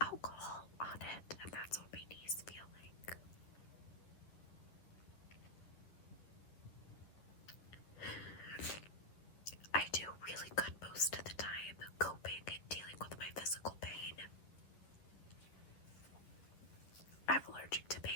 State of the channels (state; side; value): late; right; 10 ms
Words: on it, and that's what my knees feel like. I do really good most of the time coping and dealing with my physical pain. I'm allergic to